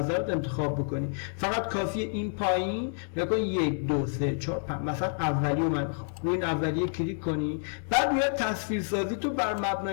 انتخاب بکنی. فقط کافیه این پایین نگاه 1 2 3 4 مثلا اولیه من میخوام روی این اولیه کلیک کنی، بعد میاد تصویرسازی تو بر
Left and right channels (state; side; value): silent; right; digital silence